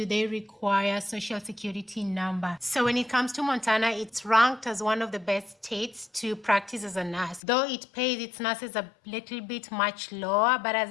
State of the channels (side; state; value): right; drops out; at 7.4 s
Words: they require social security number. So when it comes to Montana, it's ranked as one of the best states to practice as a nurse. Though it pays its nurses a little bit much lower, but